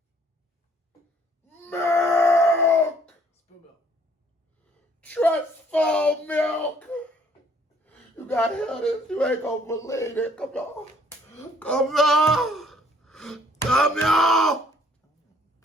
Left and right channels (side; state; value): both; normal; correlation 0.62